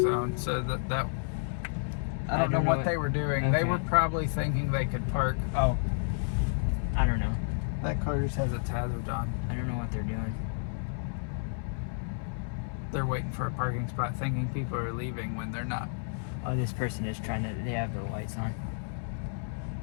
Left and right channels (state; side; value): silent; right; 57 dB below the other